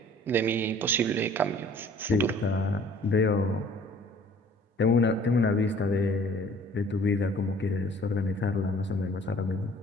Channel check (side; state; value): both; normal; correlation 0.52